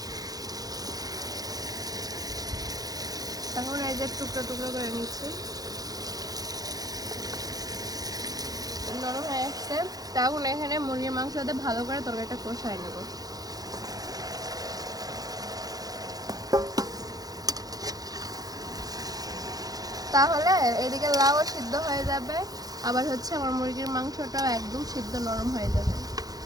এখন এই যে টুকরো টুকরো করে নিচ্ছি, নরম হয়ে আসছে। তখন এখানে মুরগির মাংস দিয়ে ভালো করে তরকারিটা কষাই নেব। তাহলে এদিকে লাউ সিদ্ধ হয়ে যাবে, আবার হচ্ছে আমার মুরগির মাংসটাও একদম সিদ্ধ নরম হয়ে যাবে।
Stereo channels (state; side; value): late; left; 0.18 ms